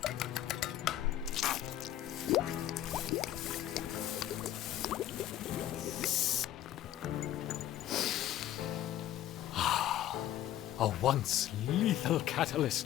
A once lethal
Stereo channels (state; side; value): quieter; right; 12.6 dB